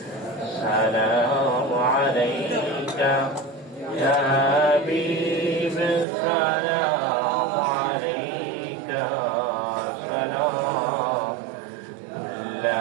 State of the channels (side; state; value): left; drops out; at 6.1 s